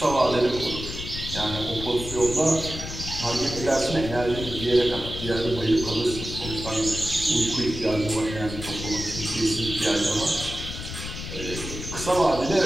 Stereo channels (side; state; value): left; noise; rumble, 8 dB below the sound